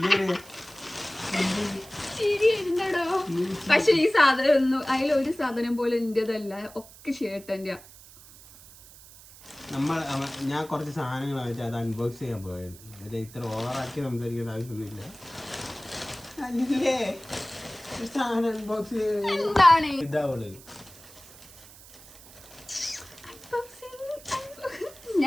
ശരിയുണ്ടോ? പക്ഷെ ഈ സാധനം ഒന്നും അതിലൊരു സാധനം പോലെ എന്റേതല്ല, ഒക്കെ ചേട്ടന്റെ. ഞാൻ കുറച്ച് സാധനങ്ങൾ വെച്ചാൽ അത് അൺബോക്സ് ചെയ്യാൻ പോയത്. ഇത്ര ഓവറാക്കി സംസാരിക്കേണ്ട ആവശ്യമൊന്നുമില്ല. സാധനം അൺബോക്സ് എന്താണ് ഇതാവുള്ളൂ.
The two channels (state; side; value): noise; right; hiss, 20 dB below the sound